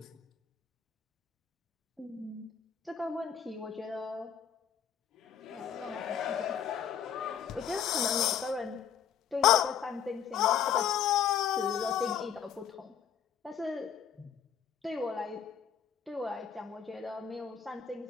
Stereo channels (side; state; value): right; quieter; 8.4 dB